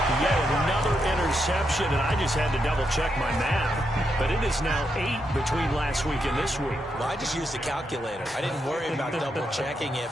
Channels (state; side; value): normal; both; correlation 0.82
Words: Yet another interception, and I just had to double-check my math. But it is now 8 between last week and this week. Well, I just used a calculator. I didn't worry about double-checking it.